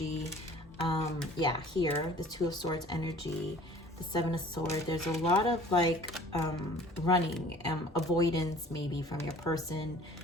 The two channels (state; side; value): normal; both; correlation 0.49